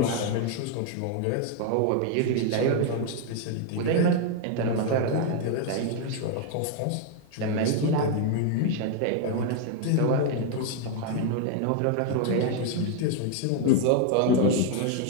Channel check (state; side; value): different; both; correlation 0.00